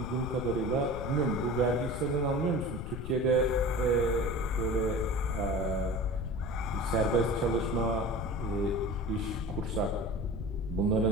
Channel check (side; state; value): left; noise; rumble, 7 dB below the sound